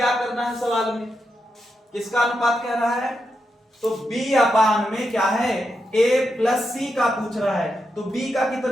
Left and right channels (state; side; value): normal; both; correlation 0.85